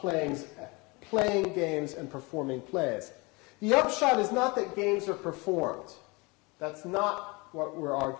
games and performing plays. The upshot is not that games are performed. That's not what we're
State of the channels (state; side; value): quieter; right; 26.6 dB